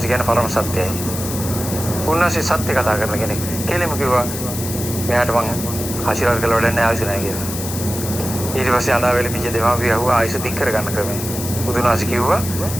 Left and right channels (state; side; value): noise; left; hiss, 7 dB below the sound